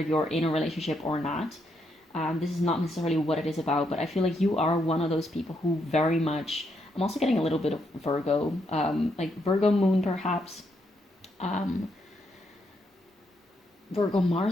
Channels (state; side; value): normal; both; correlation 0.78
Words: in a relationship or not. This is not necessarily what it is about, but I feel like you are one of those people who very much, I'm also getting a little bit of Virgo, like Virgo moon perhaps, Virgo